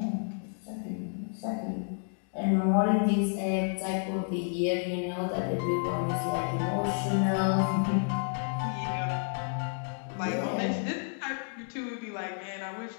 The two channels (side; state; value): right; silent; 57 dB below the other